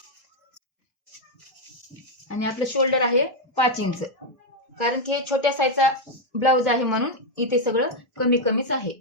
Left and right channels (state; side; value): normal; both; correlation 0.01